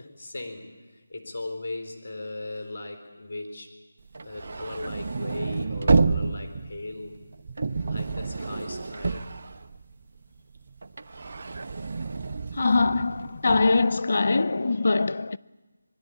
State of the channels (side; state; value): both; inverted; correlation -0.90